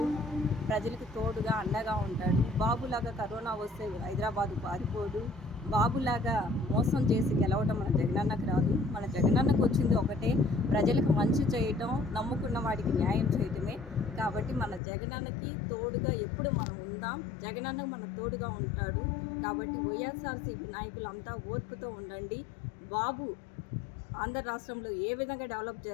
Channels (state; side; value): drops out; right; at 14.8 s